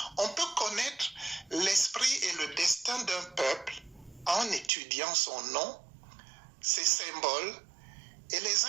On peut connaître l'esprit et le destin d'un peuple en étudiant son nom, ses symboles et les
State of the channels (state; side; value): drops out; left; at 4.7 s